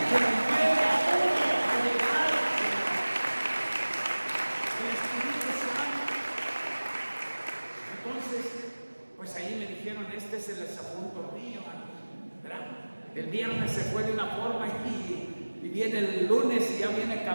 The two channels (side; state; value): both; inverted; correlation -1.00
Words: me mueve a uno a llegar el Espíritu Santo. Entonces, pues ahí me dijeron, este es el desapunto mío, ¿verdad? El viernes se fue de una forma y viene el lunes y ya viene